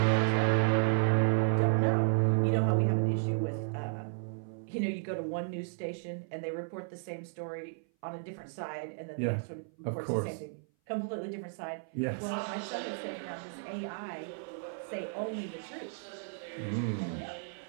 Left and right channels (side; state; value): left; silent; 56 dB below the other